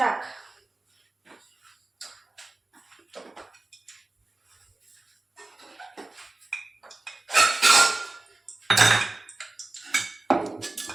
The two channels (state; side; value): quieter; left; 3.0 dB